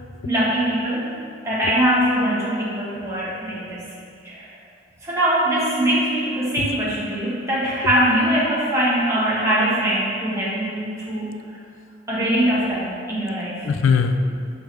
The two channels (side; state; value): both; normal; correlation 0.38